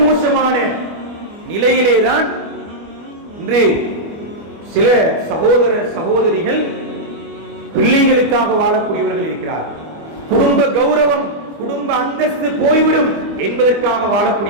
மோசமான நிலையிலேதான் இன்று சில சகோதர சகோதரிகள் பிள்ளைகளுக்காக வாழக்கூடியவர்கள் இருக்கிறார்கள். குடும்ப கௌரவம், குடும்ப அந்தஸ்து போய்விடும் என்பதற்காக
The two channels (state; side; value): late; left; 25 ms